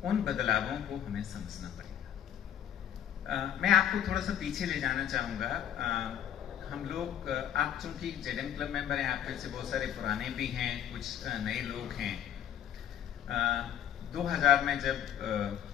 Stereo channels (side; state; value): right; quieter; 10.3 dB